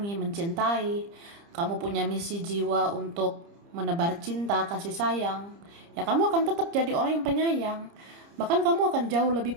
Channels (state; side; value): late; left; 30 ms